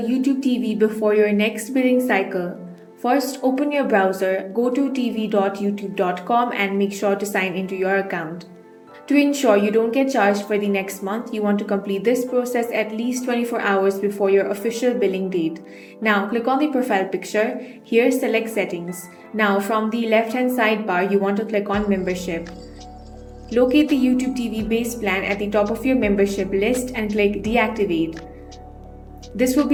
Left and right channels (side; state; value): both; identical; correlation 1.00